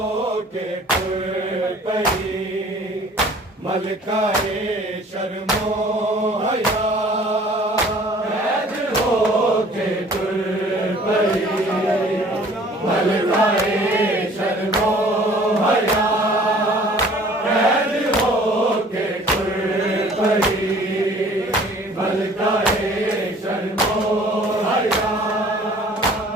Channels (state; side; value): normal; both; correlation 0.52